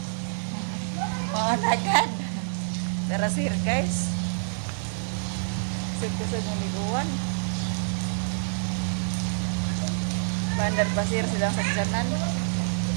Oh, nagad. Tara sir, guys. Sugod-sugod ng liguan. Bandar pasir silang sagdanan.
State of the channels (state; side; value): silent; left; digital silence